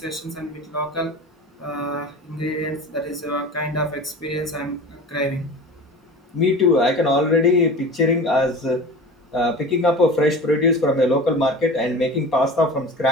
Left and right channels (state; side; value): normal; both; correlation 0.35